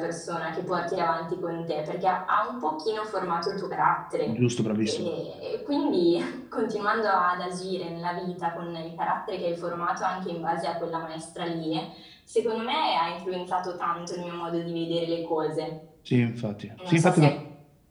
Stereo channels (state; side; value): identical; both; correlation 1.00